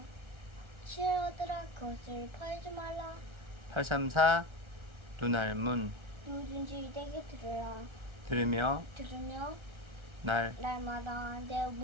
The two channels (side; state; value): left; late; 1.3 ms